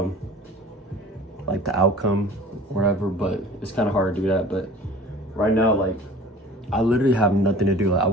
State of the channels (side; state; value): both; normal; correlation 0.44